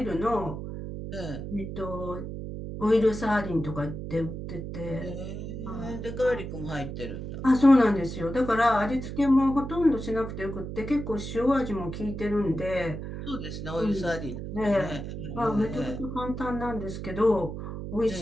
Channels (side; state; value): right; noise; hum, 7 dB below the sound